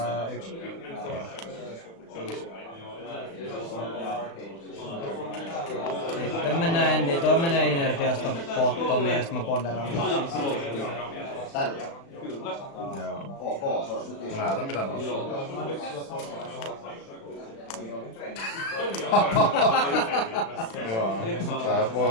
1. Sitten mennään Endi, toi menee inertiasta bottomiin ja sit mä ponderaan. Tällä. Joo. Ok, se olisi nyt iso. Näytä mitä nousuu. Joo. Tää voi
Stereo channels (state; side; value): late; right; 36 ms